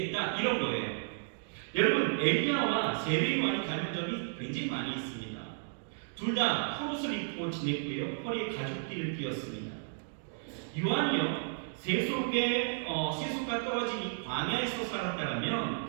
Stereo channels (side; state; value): left; silent; digital silence